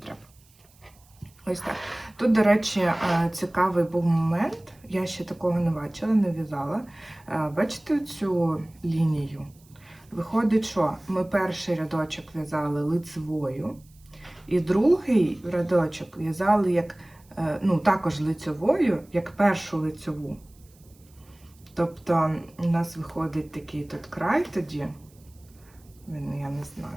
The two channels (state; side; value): noise; right; hiss, 30 dB below the sound